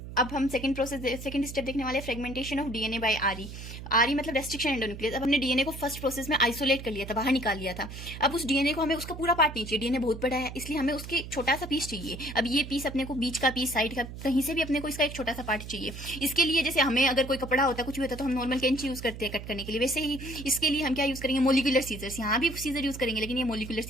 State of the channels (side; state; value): right; noise; hum, 11 dB below the sound